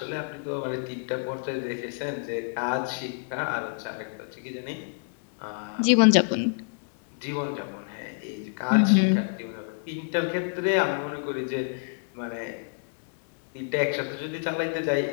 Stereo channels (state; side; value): silent; right; digital silence